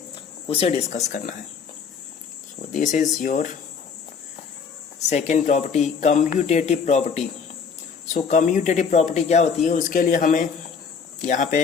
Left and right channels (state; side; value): quieter; right; 6.0 dB